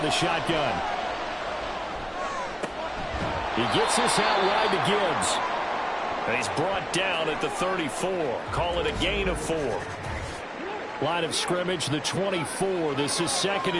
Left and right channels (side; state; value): both; identical; correlation 1.00